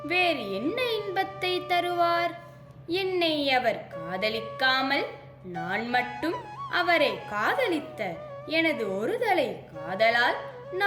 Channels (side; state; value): both; identical; correlation 1.00